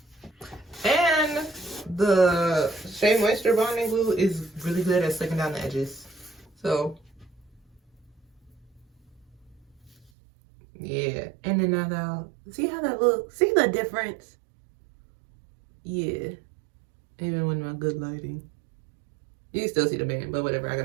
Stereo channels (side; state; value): left; drops out; at 10.1 s